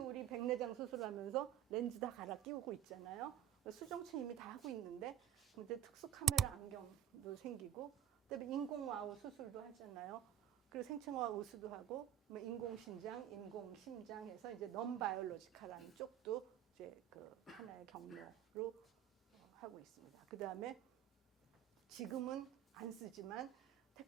백내장 수술하면서 렌즈 다 갈아 끼우고 있잖아요. 수정체 이미 다 하고 있는데 근데 특수 카메라 안경도 생기고 그다음에 인공와우 수술도 하잖아요. 그리고 생체화학 우수도 하고 인공신장, 인공심장 해서 이제 넌 바이올로지컬한 쪽도 이제 그 하나의 경로로 하고 있습니다. 그다음에 지금은 안 쓰지만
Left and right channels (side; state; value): left; quieter; 10.4 dB